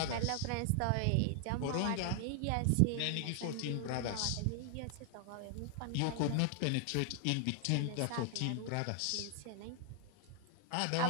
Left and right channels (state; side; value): different; both; correlation 0.00